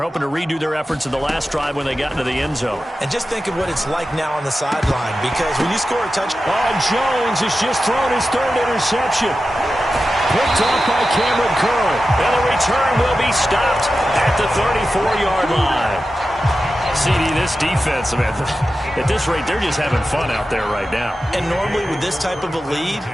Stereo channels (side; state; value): both; normal; correlation 0.93